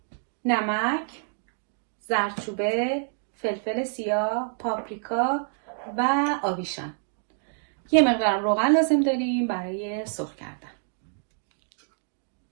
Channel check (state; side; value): silent; left; digital silence